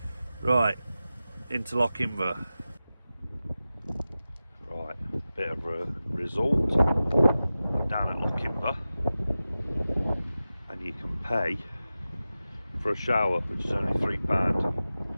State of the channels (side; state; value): both; inverted; correlation -0.94